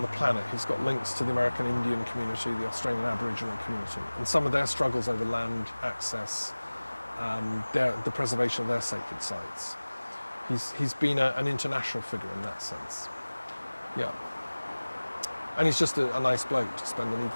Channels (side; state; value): both; inverted; correlation -1.00